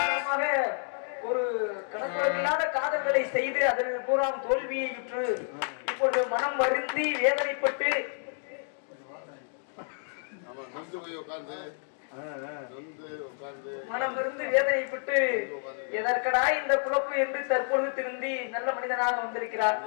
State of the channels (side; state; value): right; silent; 58 dB below the other